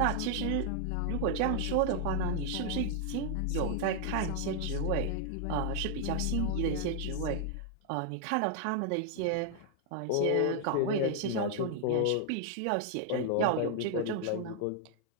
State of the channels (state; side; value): different; both; correlation 0.00